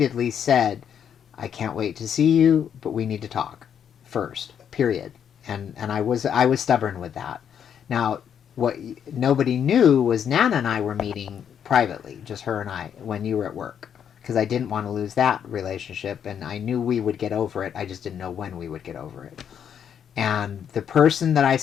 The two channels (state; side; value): quieter; right; 8.4 dB